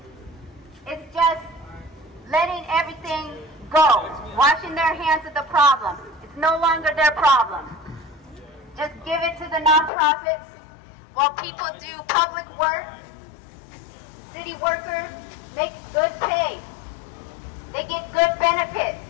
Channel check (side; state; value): right; drops out; at 9.9 s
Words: It's just letting everything go, washing their hands of the problem. It's no longer their problem. Just give it to the nonprofits while people do public work. City workers make good pay. They get good benefits.